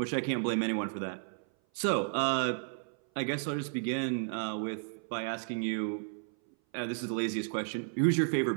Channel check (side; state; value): left; silent; 56 dB below the other